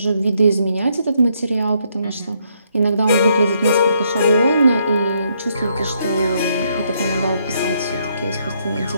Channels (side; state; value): both; inverted; correlation -0.74